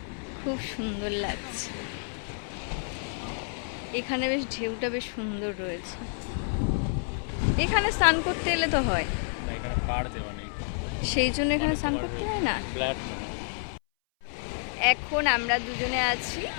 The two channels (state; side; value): silent; right; 58 dB below the other